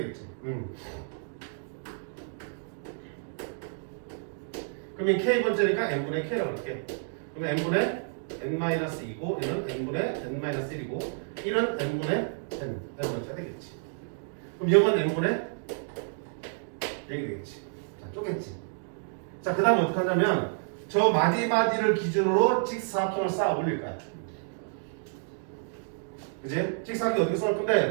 그러면 k번째니까 n분의 k라고 할게. 그러면 n분의 n-2고 얘는 n분의 n-1이고 1은 n분의 n번째가 되겠지. 그럼 0은 n분의 0이 되겠지. 자, 쪼갰지. 자, 그 다음에 어떻게 하냐면 저 마디마디를 기준으로 직사각형을 쌓아 올릴 거야. 그지? 직사각형 어떻게 쌓을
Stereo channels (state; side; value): silent; left; digital silence